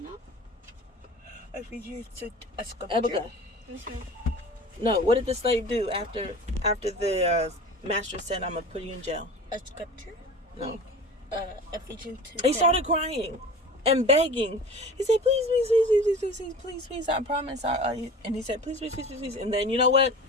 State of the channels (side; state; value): both; normal; correlation 0.38